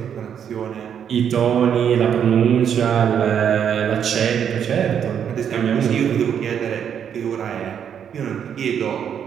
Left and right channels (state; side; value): quieter; left; 8.4 dB